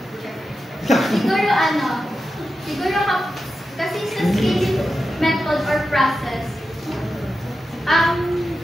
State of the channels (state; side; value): normal; both; correlation 0.90